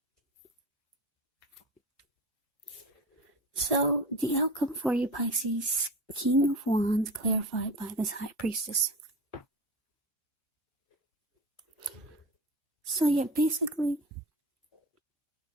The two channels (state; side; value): normal; both; correlation 0.31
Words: So, the outcome for you, Pisces, King of Wands, clarified by this High Priestess. So, yeah, basically,